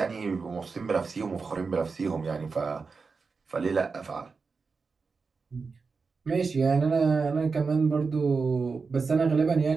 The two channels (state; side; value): quieter; left; 4.7 dB